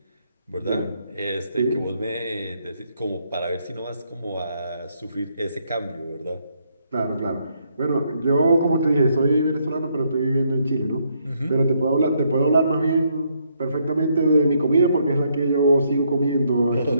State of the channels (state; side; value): inverted; both; correlation -0.73